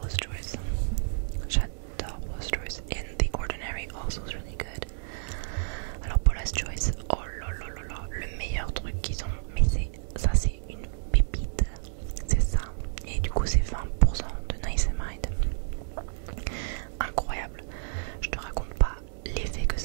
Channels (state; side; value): silent; left; digital silence